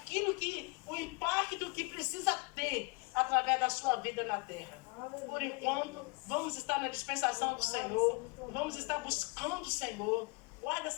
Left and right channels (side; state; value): right; quieter; 28.8 dB